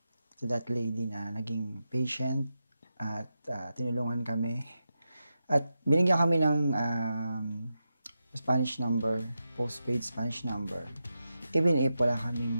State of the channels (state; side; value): inverted; both; correlation -0.89